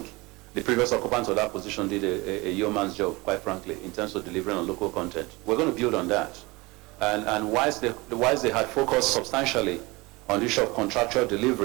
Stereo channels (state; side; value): quieter; left; 23.7 dB